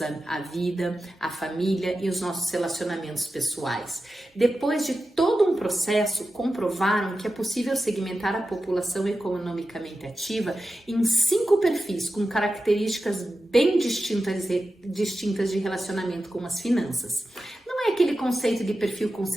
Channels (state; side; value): normal; both; correlation 0.93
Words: a vida, a família e os nossos relacionamentos pessoais. Depois de todo um processo, comprovaram que é possível segmentar a população economicamente ativa em 5 perfis com características bem distintas de relacionamento com as finanças. Não é aquele conceito de perfil